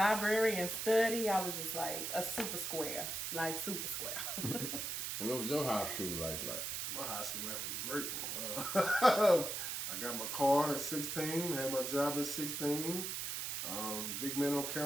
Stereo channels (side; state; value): right; noise; hiss, 3 dB below the sound